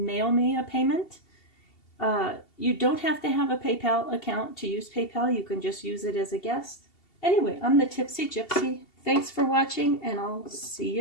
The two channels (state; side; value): late; right; 2.7 ms